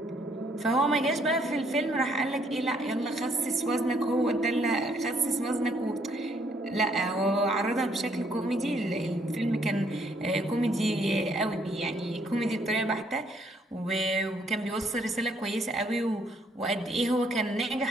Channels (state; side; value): normal; both; correlation 0.68